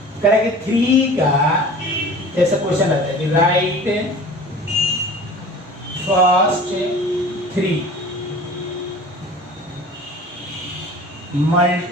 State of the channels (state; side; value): normal; both; correlation 0.42